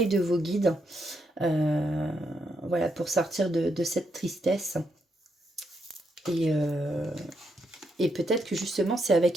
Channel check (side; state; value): both; normal; correlation 0.79